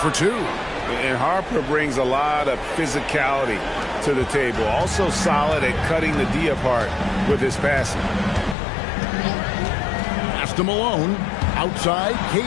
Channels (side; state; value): right; drops out; at 8.6 s